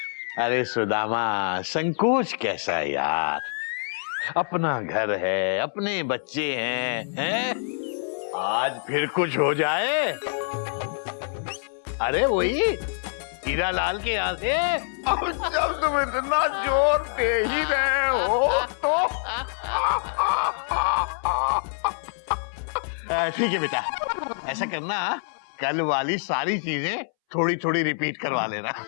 अरे सुदामा, संकोच कैसा है यार, अपना घर है, अपने बच्चे हैं? आज फिर कुछ हो जाए। अरे वही हीरा लाल के यहाँ से। अब जब तुम इतना जोर दे ही रहे हो तो ठीक है बेटा, ऐसा करना, कल वाली सारी चीजें थोड़ी थोड़ी रिपीट करवा लेना।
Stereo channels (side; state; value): right; silent; 61 dB below the other